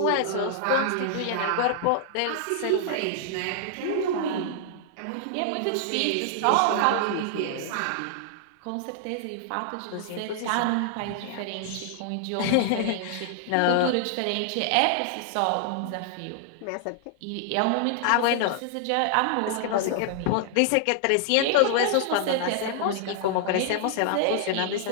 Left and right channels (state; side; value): different; both; correlation 0.00